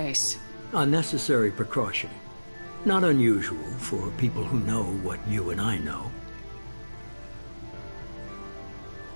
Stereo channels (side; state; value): both; inverted; correlation -1.00